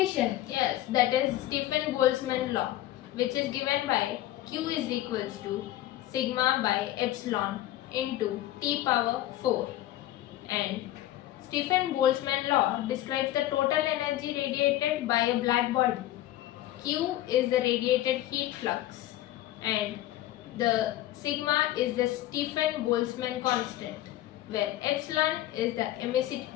Yes, that is Stefan-Boltzmann law, which is given by Q is equals to sigma by epsilon into T power 4. And Stefan-Boltzmann law describes the total energy radiated by a black body. Q is the radiated heat flux, and the sigma is the Stefan-Boltzmann constant, where epsilon is the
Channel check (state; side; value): quieter; right; 14.5 dB